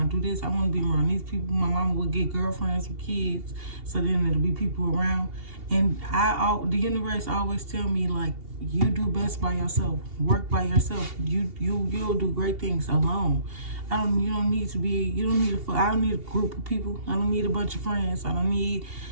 do this? I want to be around these people. My mama would get girlfriends with kids, so then there'll be people around. And the universe always tell me, like, you do best by yourself. Work by yourself. You'll do great things alone. I don't need a group of people. I don't need a bunch of friends. I don't need,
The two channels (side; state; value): left; late; 2.8 ms